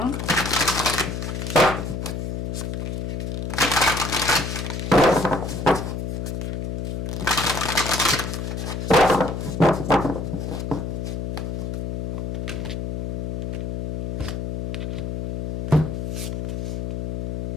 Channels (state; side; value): noise; left; hum, 3 dB below the sound